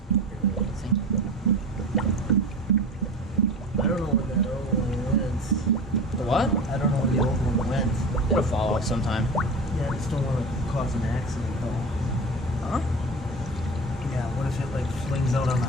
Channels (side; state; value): both; normal; correlation 0.32